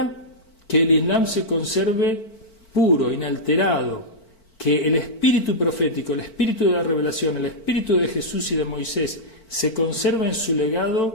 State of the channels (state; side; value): late; right; 4.5 ms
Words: que el Islam se conserve puro, inalterado, que el espíritu profético, el espíritu de la revelación, el espíritu de Jesús y de Moisés se conserva en su